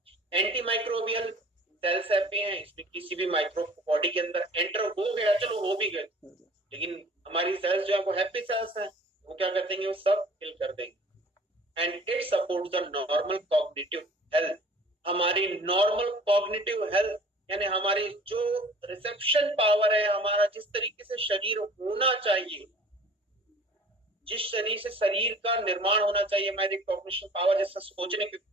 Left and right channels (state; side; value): normal; both; correlation 0.48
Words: एंटी माइक्रोबियल सेल्स हैप्पी हैं, इसमें किसी भी माइक्रो बॉडी के अंदर एंटर हो गया, चलो हो भी गए, लेकिन हमारी सेल्स जो है वो हैप्पी सेल्स हैं, वो क्या कर देंगे? वो सब किल कर देंगे। And it supports the normal cognitive health. हमारी नॉर्मल कॉग्निटिव हेल्थ यानी हमारी जो रिसेप्शन पावर है, हमारा जिस तरीके से शरीर होना चाहिए, जिस शरीर से शरीर का निर्माण होना चाहिए, हमारी कॉग्निशन पावर जैसे सोचने की